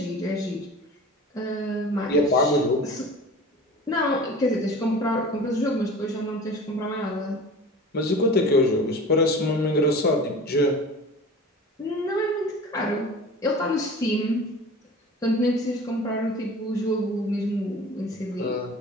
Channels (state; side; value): normal; both; correlation 0.39